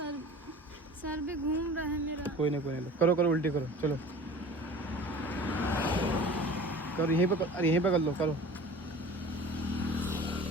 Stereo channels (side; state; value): both; normal; correlation 0.41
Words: सर भी घूम रहा है मेरा। कोई नहीं, करो उल्टी करो, चलो करो, यहीं पे कर लो, करो।